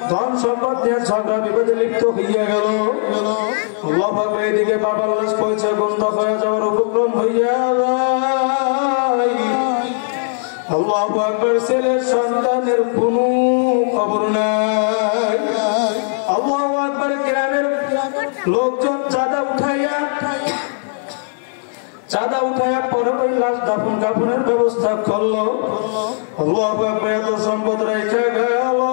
ধন সম্পদ নিয়ে ঝগড়া বিবাদে লিপ্ত হইয়া গেল আল্লাহু আকবার এদিকে বাবার লাশ পয়সা বন্ধ হয়ে যাওয়ার উপক্রম হইয়া যায় আল্লাহু আকবার ছেলের সন্তানের কোনো খবর নাই আল্লাহু আকবার গ্রামের লোকজন চাঁদা উঠাইয়া পরে ওই লাশ দাফন কাফনের ব্যবস্থা করলো আল্লাহু আকবার এত সম্পদ রেখে গেল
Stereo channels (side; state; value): right; silent; digital silence